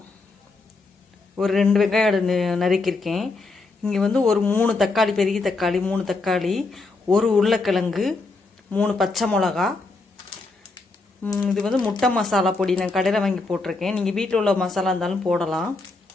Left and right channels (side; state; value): right; quieter; 3.6 dB